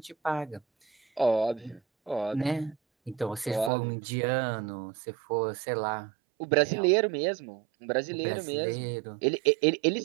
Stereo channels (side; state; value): left; drops out; at 3.7 s